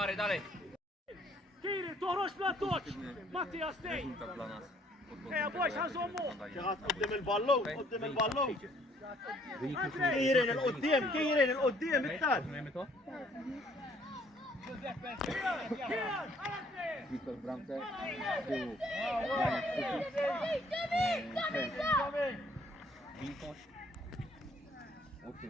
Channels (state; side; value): normal; both; correlation 0.62